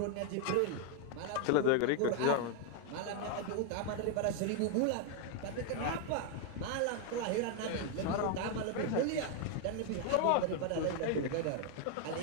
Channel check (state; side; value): different; both; correlation 0.01